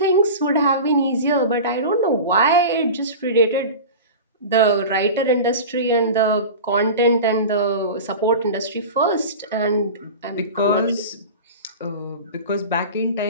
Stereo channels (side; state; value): both; inverted; correlation -0.31